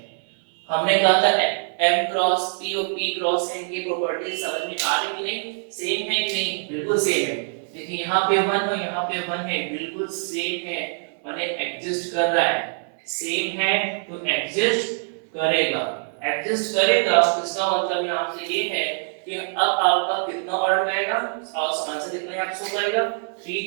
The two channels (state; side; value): silent; left; 63 dB below the other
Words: हमने कहा था m क्रॉस p और p क्रॉस n की प्रॉपर्टी समझ में आ रही कि नहीं, सेम है कि नहीं, बिल्कुल सेम है। देखिए यहाँ पे 1 और यहाँ पे 1 है, बिल्कुल सेम है, माने एग्जिस्ट कर रहा है, सेम है तो एग्जिस्ट करेगा। एग्जिस्ट करेगा इसका मतलब यहाँ से ये है कि अब आपका कितना ऑर्डर आएगा और आंसर कितना यहाँ शो करेगा